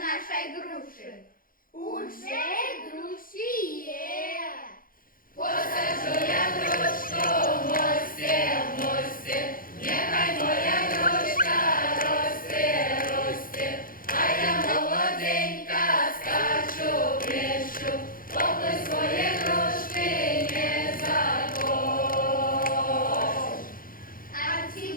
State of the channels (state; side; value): late; right; 0.41 ms